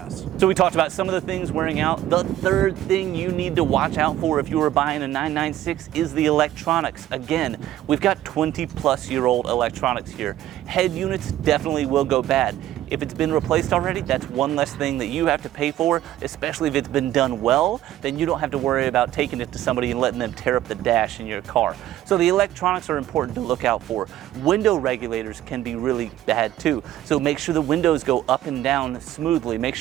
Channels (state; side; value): quieter; left; 13.1 dB